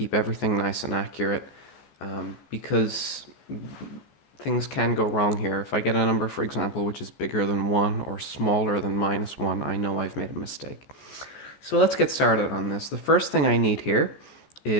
everything nice and accurate, because things can go wrong here. If I get a number, for example, which is bigger than 1 or smaller than -1, I know I've made a mistake. So let's get started on this. The first thing I need here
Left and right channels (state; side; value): late; right; 14 ms